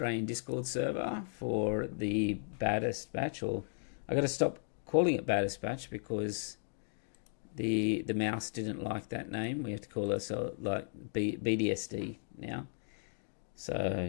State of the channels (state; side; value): silent; right; digital silence